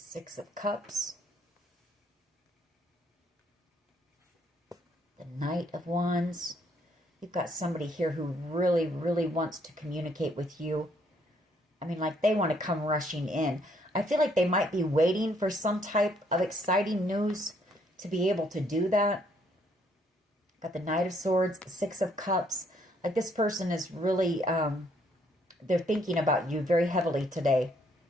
of Cups. The Knight of Wands. You've got somebody here who really, really wants to communicate with you. I mean, like they want to come rushing in. I feel like they might be waiting for some type of exciting news to be able to do that. Got the Knight of Swords, the Six of Cups. Like this person is really, they're thinking about you very heavily today.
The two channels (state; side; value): normal; both; correlation 0.68